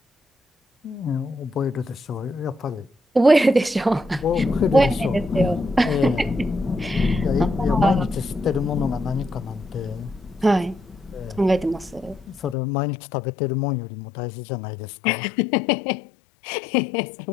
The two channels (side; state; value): right; drops out; at 12.6 s